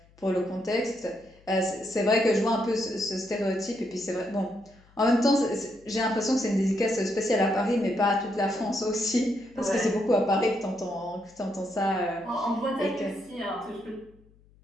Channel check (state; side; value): noise; left; hum, 29 dB below the sound